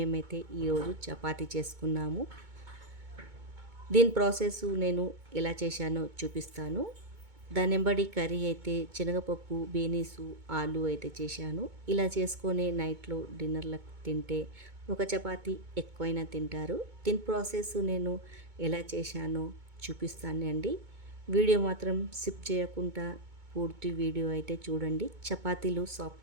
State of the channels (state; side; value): late; left; 2.2 ms